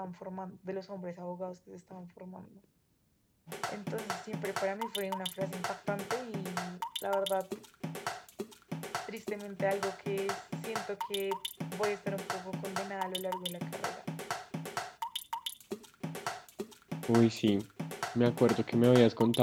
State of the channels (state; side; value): identical; both; correlation 1.00